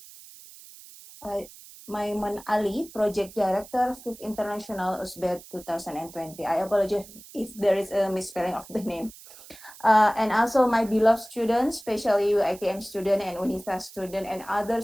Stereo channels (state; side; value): noise; right; hiss, 19 dB below the sound